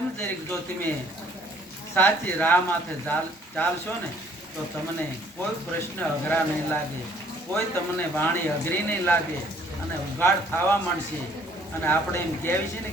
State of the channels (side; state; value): both; normal; correlation 0.60